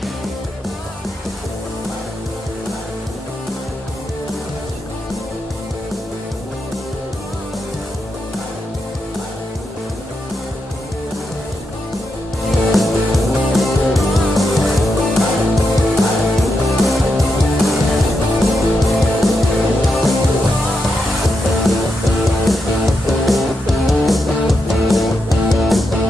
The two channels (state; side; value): normal; both; correlation 0.85